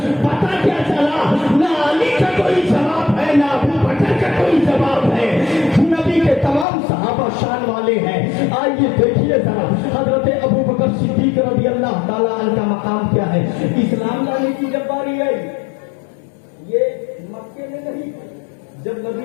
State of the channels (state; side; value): drops out; right; at 6.7 s